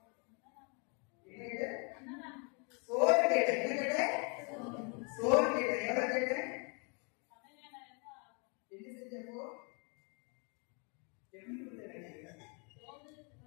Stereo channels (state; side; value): quieter; right; 34.8 dB